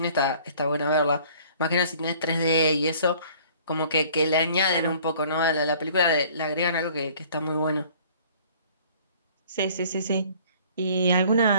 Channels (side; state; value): both; inverted; correlation -0.53